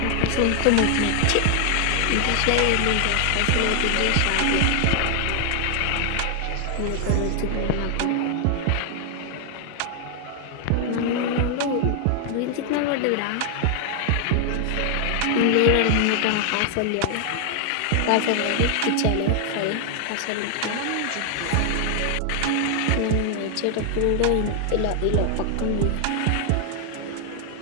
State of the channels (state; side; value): different; both; correlation 0.00